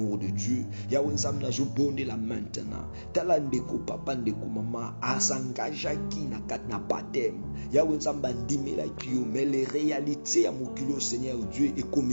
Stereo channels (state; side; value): inverted; both; correlation -1.00